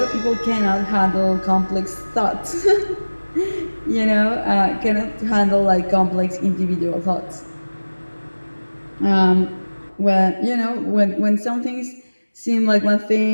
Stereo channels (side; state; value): both; inverted; correlation -1.00